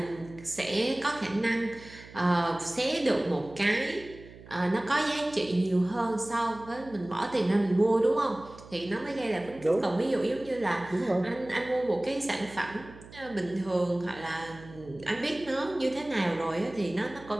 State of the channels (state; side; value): noise; right; hum, 19 dB below the sound